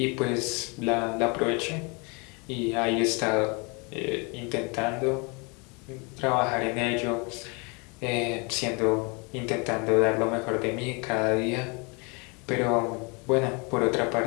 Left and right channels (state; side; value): quieter; right; 31.1 dB